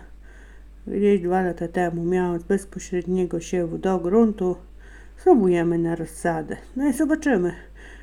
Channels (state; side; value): identical; both; correlation 1.00